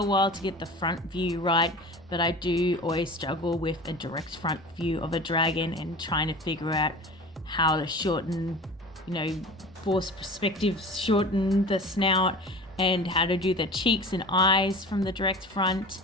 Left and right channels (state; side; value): normal; both; correlation 0.36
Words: while to get the front view right, but I do always struggle with a direct front view of a dragon and trying to figure out how to shorten, force perspective, shorten the snout, and how to do the cheeks and eyes from the direct front.